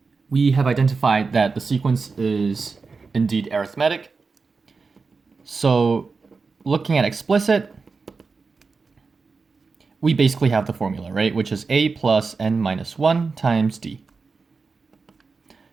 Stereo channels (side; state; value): left; quieter; 4.5 dB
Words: we have identified that the sequence is indeed arithmetic. So looking at explicit, we basically have the formula, right? Which is A plus n-1 times D.